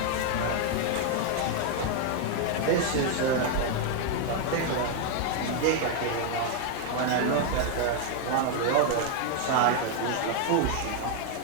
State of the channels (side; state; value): both; different; correlation 0.01